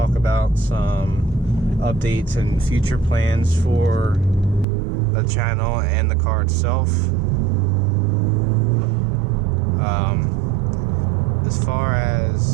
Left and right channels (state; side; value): drops out; left; at 4.7 s